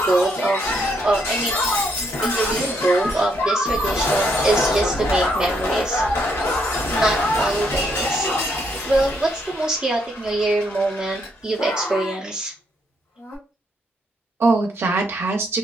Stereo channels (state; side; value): normal; both; correlation 0.74